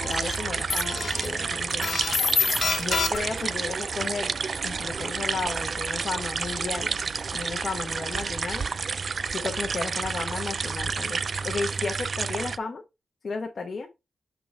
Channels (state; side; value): normal; both; correlation 0.83